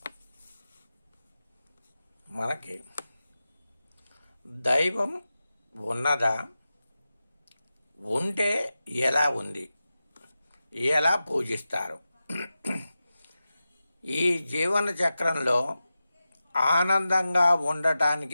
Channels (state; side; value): inverted; both; correlation -0.93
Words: మనకి దైవం ఉన్నదా, ఉంటే ఎలా ఉంది, ఎలా పూజిస్తారు? ఈ జీవన చక్రంలో ఆనందంగా